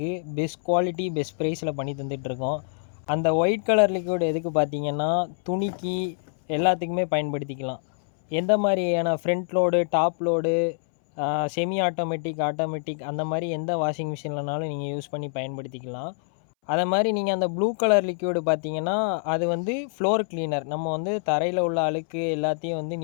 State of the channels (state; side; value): silent; right; 61 dB below the other